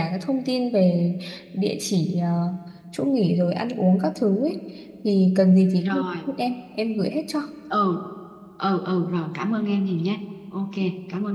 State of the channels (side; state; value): both; identical; correlation 1.00